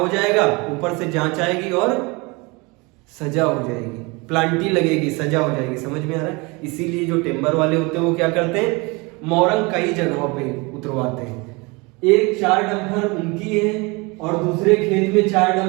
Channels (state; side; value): quieter; left; 26.7 dB